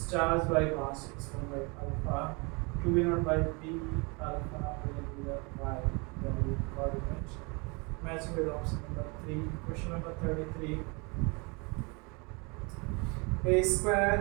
charged by mass, it's 1 by alpha. 2 v naught by b alpha will be the y value coordinate. Matching with option number 3. Question number 33. A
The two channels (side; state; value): left; quieter; 30.1 dB